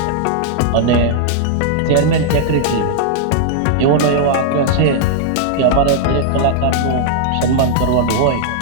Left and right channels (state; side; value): different; both; correlation -0.01